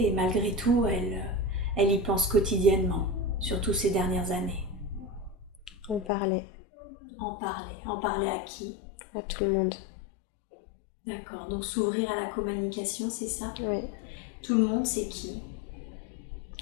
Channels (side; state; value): right; drops out; at 6.1 s